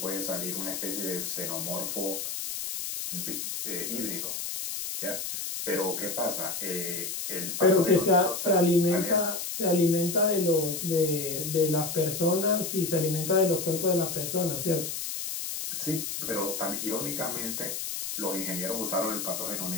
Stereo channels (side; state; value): left; noise; hiss, 4 dB below the sound